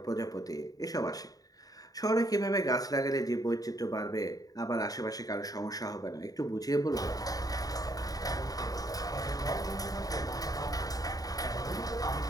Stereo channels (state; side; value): late; right; 0.18 ms